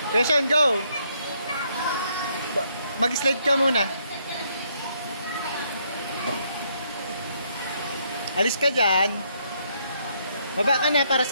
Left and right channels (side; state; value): both; inverted; correlation -0.72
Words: Okay, Sean, go. Mag-slide ka muna. Alis ka dyan. Baba ka na para